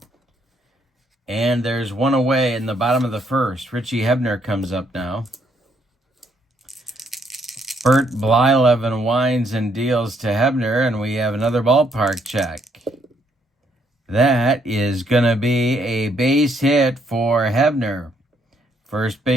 And there's 1 away in the bottom of the first. Richie Hebner comes up now. Bert Blyleven winds and deals to Hebner, and we have another ballpark check. That is going to be a base hit for Hebner. First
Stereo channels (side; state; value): both; normal; correlation 0.71